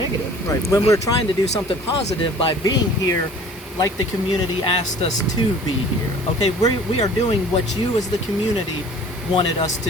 Right. When we're trying to do something positive by being here, like the community asked us to be here. Okay, we are doing what you as the community wanted us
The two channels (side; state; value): both; normal; correlation 0.48